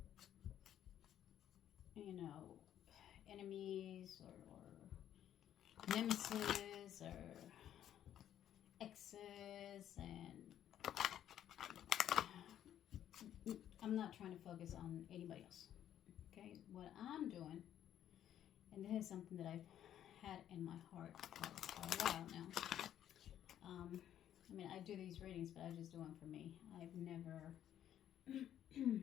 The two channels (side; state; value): right; quieter; 10.9 dB